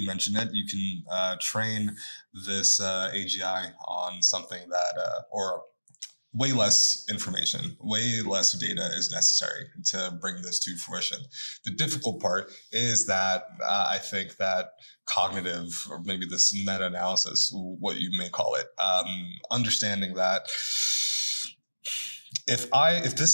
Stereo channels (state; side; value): inverted; both; correlation -1.00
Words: mentioned it. You can train this AGI on something that, or way less information, way less data is necessary to bring this to fruition. The difficult part is that I think that cognitive, or maybe this meta-analysis, what you may call it, understanding that if